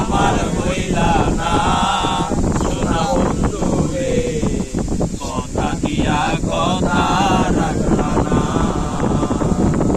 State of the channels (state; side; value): identical; both; correlation 1.00